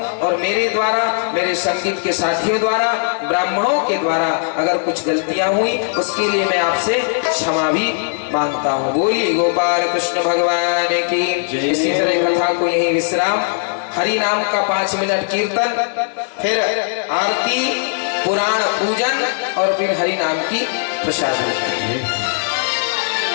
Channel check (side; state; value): right; silent; digital silence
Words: और मेरे द्वारा, मेरे संगीत के साथियों द्वारा, ब्राह्मणों के द्वारा अगर कुछ गलतियां हुई उसके लिए मैं आपसे क्षमा भी मांगता हूं। बोलिए गोपाल कृष्ण भगवान की। इसी तरह कथा को यही विश्राम, हरि नाम का 5 मिनट कीर्तन, फिर आरती, पुराण पूजन और फिर हरि नाम की प्रसाद।